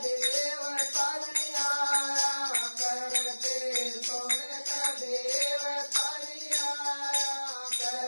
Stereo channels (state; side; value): inverted; both; correlation -1.00